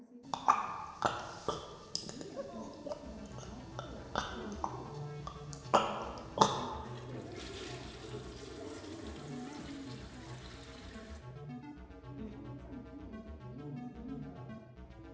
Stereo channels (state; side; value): identical; both; correlation 1.00